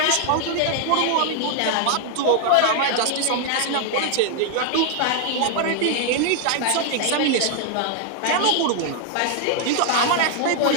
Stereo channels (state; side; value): different; both; correlation 0.00